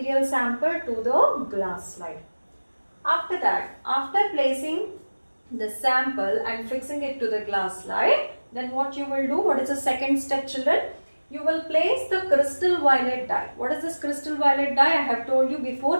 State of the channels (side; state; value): both; inverted; correlation -1.00